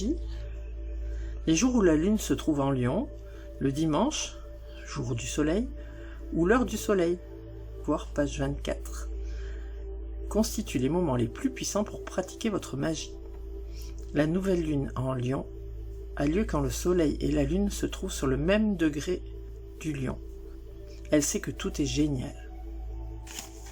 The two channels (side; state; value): both; identical; correlation 1.00